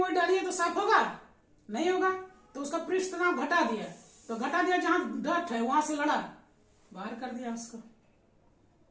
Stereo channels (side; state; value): both; identical; correlation 1.00